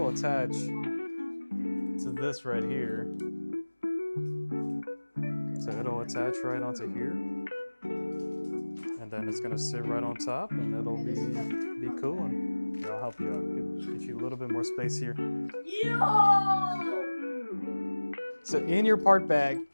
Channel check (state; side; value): inverted; both; correlation -1.00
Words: attach to this right here. So it'll attach right onto here. And then it's gonna sit right on top and it'll be cooling. Here, I'll help you out. Get you a little bit more space here. So in your part bag,